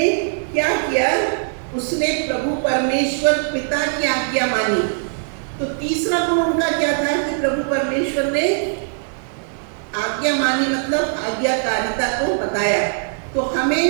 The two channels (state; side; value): silent; left; 65 dB below the other